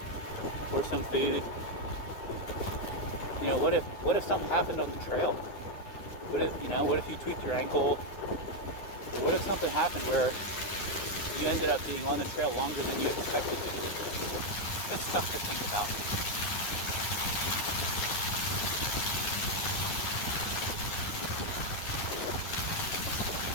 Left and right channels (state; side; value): late; right; 11 ms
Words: or some food? You know, what if something happened on the trail? What if you tweaked your ankle? Or what if something happened where you ended up being on the trail longer than you expected to. Good stuff to think about.